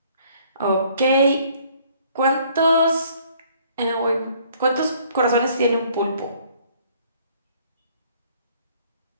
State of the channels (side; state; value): both; inverted; correlation -0.60